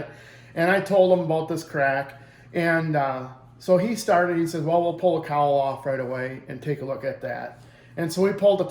And I told him about this crack. And so he said, well, we'll pull the cowl off right away and take a look at that. And so we pulled the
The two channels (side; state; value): both; identical; correlation 1.00